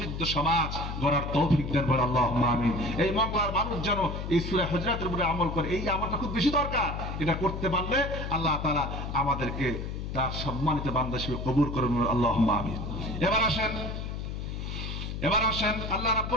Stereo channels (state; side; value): noise; left; hum, 5 dB below the sound